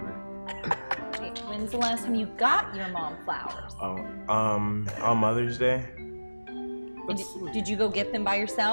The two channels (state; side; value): inverted; both; correlation -1.00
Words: Okay, when's the last time you got your mom flowers? On Mother's Day, And did you go get them by